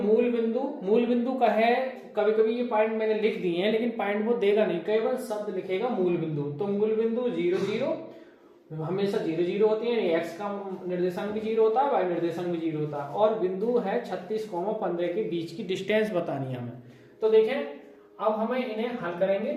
बिंदु का है। कभी कभी ये पॉइंट मैंने लिख दिए हैं, लेकिन पॉइंट वो देगा नहीं, केवल शब्द लिखेगा मूल बिंदु। तो मूल बिंदु 0 0 हमेशा 0 0 होती है, एक्स का निर्देशांक भी 0 होता है, वाई निर्देशांक भी 0 होता है। और बिंदु है 36,15 के बीच की डिस्टेंस बतानी है हमें। तो देखें, अब हमें इन्हें हल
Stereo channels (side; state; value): both; identical; correlation 1.00